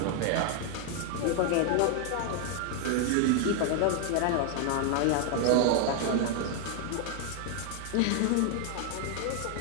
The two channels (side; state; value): both; different; correlation 0.00